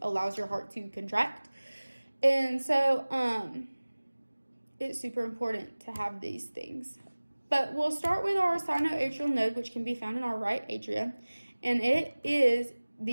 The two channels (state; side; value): inverted; both; correlation -1.00